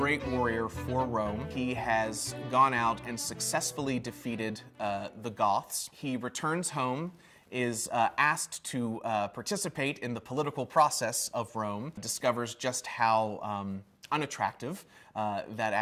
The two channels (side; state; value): both; identical; correlation 1.00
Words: warrior for Rome. He has gone out and successfully defeated the Goths. He returns home, is asked to participate in the political process of Rome, discovers just how unattractive that